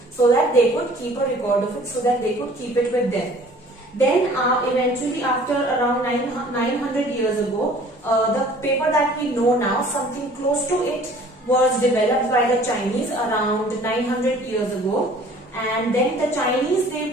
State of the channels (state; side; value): normal; both; correlation 0.51